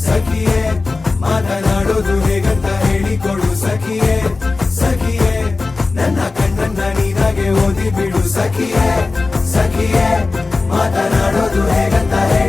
ಸಖಿಯೇ ಮಾತನಾಡೋದು ಹೇಗಂತ ಹೇಳಿಕೊಡು ಸಖಿಯೇ ಸಖಿಯೇ ನನ್ನ ಕಣ್ಣನ್ನ ನೀನಾಗೆ ಓದಿ ಬಿಡು ಸಖಿಯೇ ಸಖಿಯೇ ಮಾತನಾಡೋದು ಹೇಗಂತ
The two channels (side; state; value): right; quieter; 3.7 dB